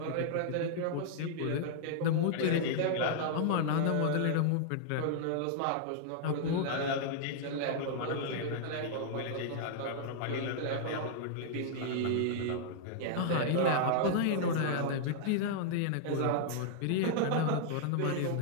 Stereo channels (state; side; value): different; both; correlation -0.01